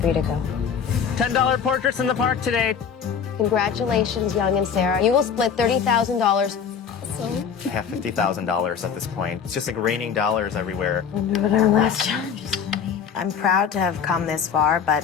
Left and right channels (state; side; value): quieter; right; 7.1 dB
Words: you to go. $10 portraits in the park today. Congratulations, Young and Sarah. You will split $30,000. I have $50,000 at this point. It's just like raining dollars everywhere. Wonder what our last challenge is gonna be. I'm proud to have come this far, but